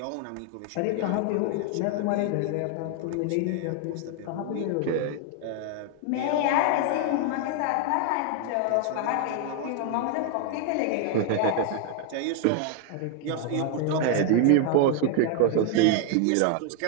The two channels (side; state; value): both; different; correlation 0.00